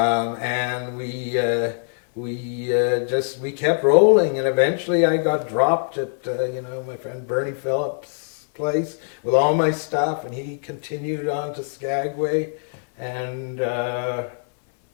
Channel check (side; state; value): right; silent; 60 dB below the other